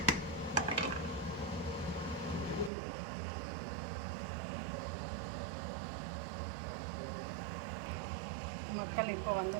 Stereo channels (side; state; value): left; drops out; at 2.7 s